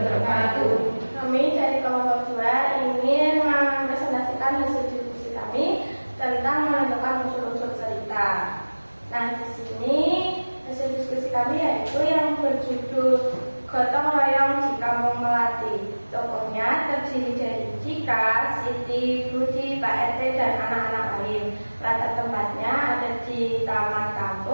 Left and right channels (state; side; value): inverted; both; correlation -1.00